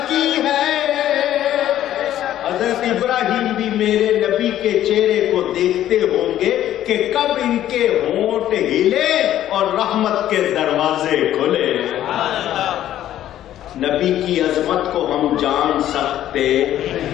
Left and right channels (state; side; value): quieter; right; 12.3 dB